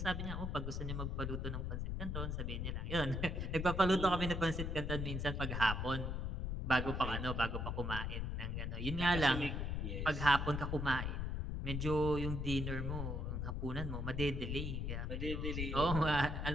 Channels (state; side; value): noise; left; rumble, 2 dB below the sound